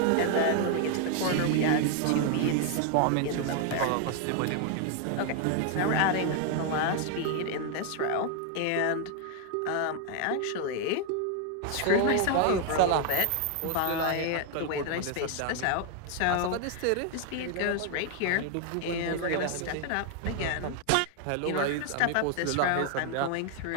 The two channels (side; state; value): both; different; correlation 0.00